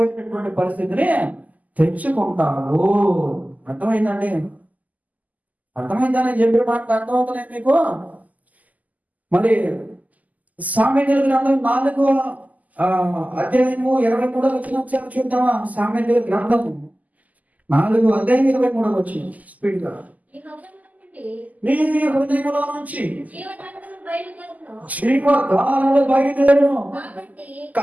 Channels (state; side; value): late; left; 0.078 ms